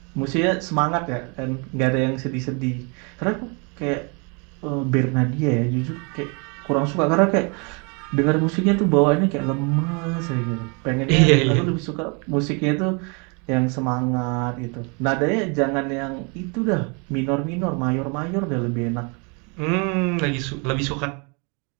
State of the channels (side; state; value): left; quieter; 33.3 dB